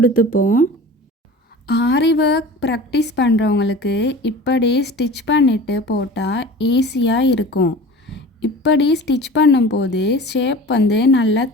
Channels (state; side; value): normal; both; correlation 0.37